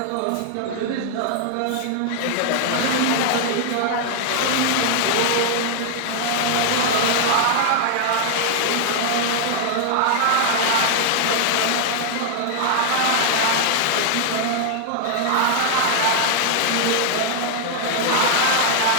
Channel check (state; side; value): different; both; correlation 0.00